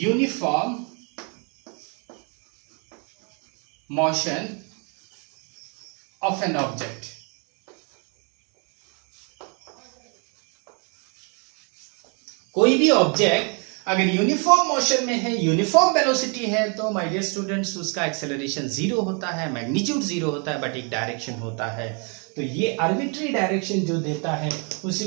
motion of an object। कोई भी ऑब्जेक्ट अगर यूनिफॉर्म मोशन में है, यूनिफॉर्म वेलोसिटी है, तो माय डियर स्टूडेंट्स उसका एक्सेलरेशन 0 होता है, मैग्नीट्यूड 0 होता है, बट एक डायरेक्शन होता है। तो ये आर्बिट्री डायरेक्शन जो देता है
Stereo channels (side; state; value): left; quieter; 36.2 dB